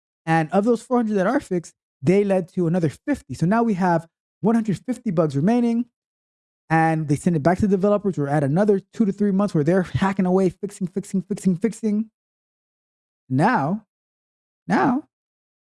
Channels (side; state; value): both; identical; correlation 1.00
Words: And of those 400 that are fixed, they led to another 50. So now we have 150 bugs remaining. And they send it back to the developers. We're at another 2 to 3 months where they're hacking away, fixing. Now,